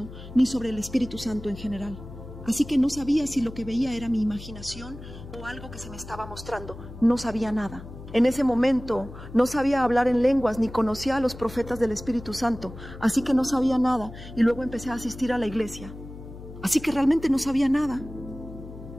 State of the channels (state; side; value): noise; left; hum, 14 dB below the sound